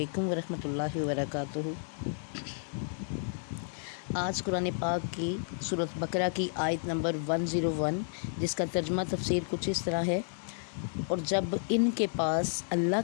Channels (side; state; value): right; silent; digital silence